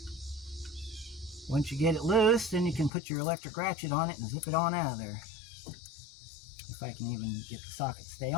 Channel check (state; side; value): drops out; right; at 2.9 s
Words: Once you get it loose, then you can put your electric ratchet on it and zip it on out of there. If I can even get the socket to stay